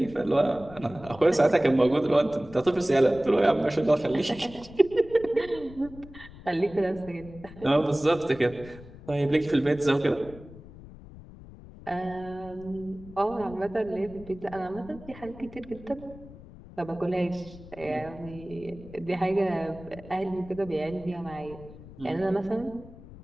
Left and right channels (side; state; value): left; noise; rumble, 18 dB below the sound